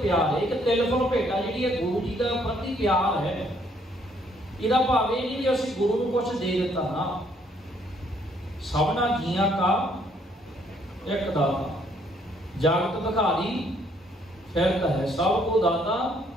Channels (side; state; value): both; normal; correlation 0.67